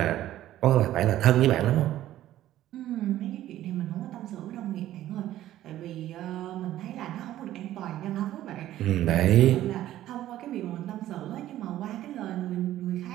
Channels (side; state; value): left; quieter; 13.5 dB